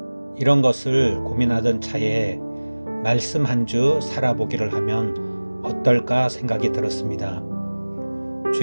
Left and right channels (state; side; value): inverted; both; correlation -1.00